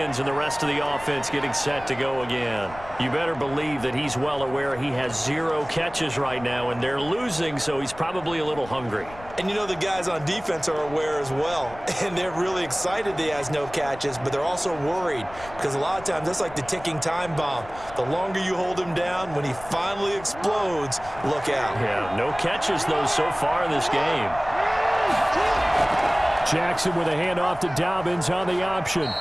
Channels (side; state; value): left; noise; rumble, 18 dB below the sound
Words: and the rest of the offense getting set to go again. You better believe that he's well aware he has 0 catches right now, and they're losing, so he's probably a little hungry. And you know the guys on defense are aware as well, and they're really excited that he has no catches, but they're also worried because a lot of times that's like the ticking time bomb. The longer you hold him down, when he finally explodes, look out. Yeah, no catches, though, so far in this game. Jackson with a handoff to Dobbins on the option.